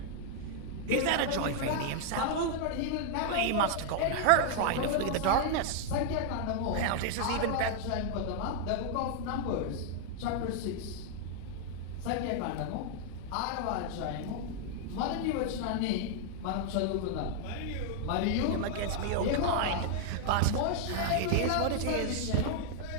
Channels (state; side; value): different; both; correlation 0.00